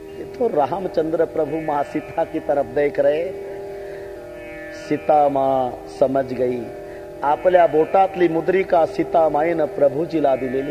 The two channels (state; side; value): identical; both; correlation 1.00